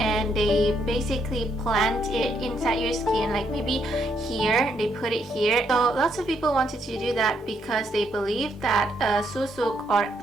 they basically plant it inside your skin, like maybe here, they put it here. So lots of people wanted to do that because they believe that Susuk, or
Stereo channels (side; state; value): both; normal; correlation 0.74